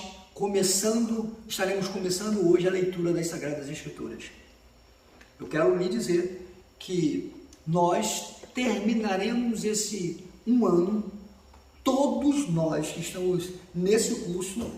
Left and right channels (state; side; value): identical; both; correlation 1.00